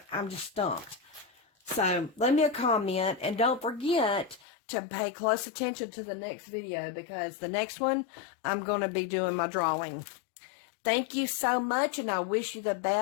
just stumped. So leave me a comment, and don't forget to pay close attention to the next video, because the next one I'm going to be doing my drawing. Thank you so much, and I wish you the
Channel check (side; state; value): right; drops out; at 4.4 s